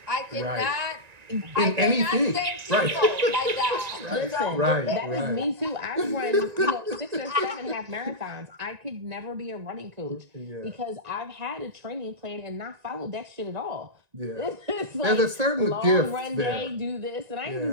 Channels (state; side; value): late; left; 1.9 ms